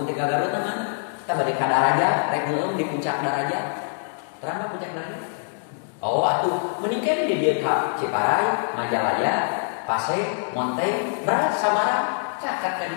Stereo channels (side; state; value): right; silent; digital silence